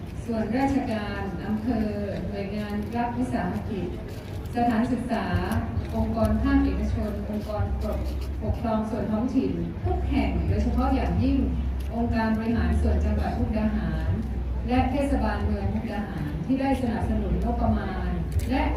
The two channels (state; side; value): identical; both; correlation 1.00